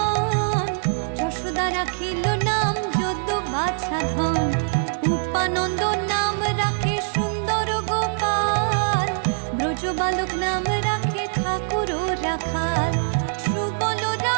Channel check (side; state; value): left; silent; digital silence